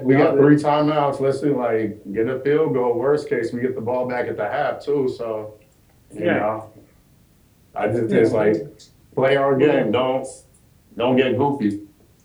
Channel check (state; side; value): identical; both; correlation 1.00